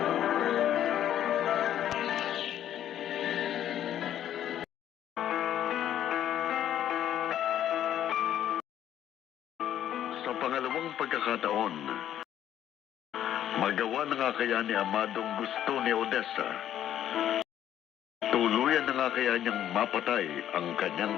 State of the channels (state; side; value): quieter; right; 11.1 dB